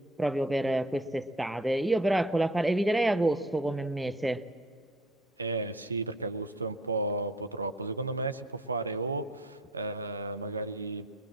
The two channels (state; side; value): normal; both; correlation 0.53